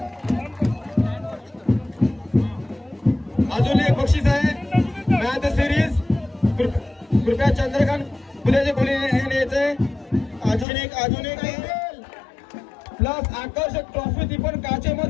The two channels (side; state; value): right; drops out; at 10.7 s